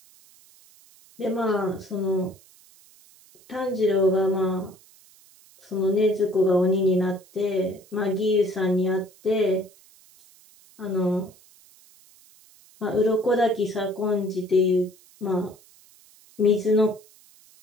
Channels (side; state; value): right; noise; hiss, 27 dB below the sound